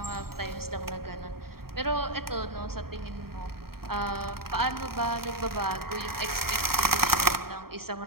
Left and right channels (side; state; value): left; late; 0.94 ms